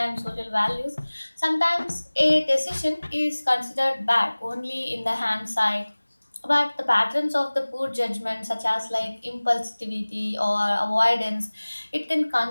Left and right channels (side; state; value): both; inverted; correlation -1.00